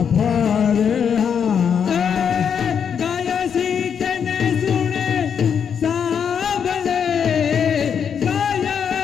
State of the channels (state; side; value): quieter; right; 7.4 dB